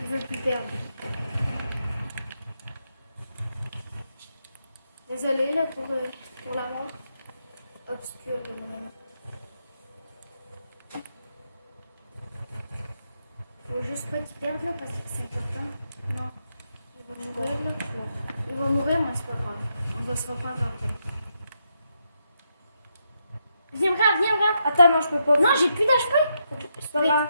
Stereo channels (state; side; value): inverted; both; correlation -0.81